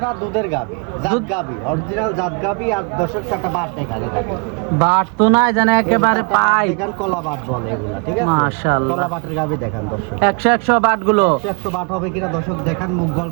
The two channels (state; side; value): quieter; left; 35.4 dB